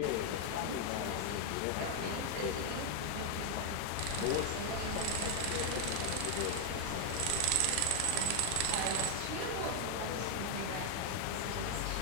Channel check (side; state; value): both; different; correlation 0.00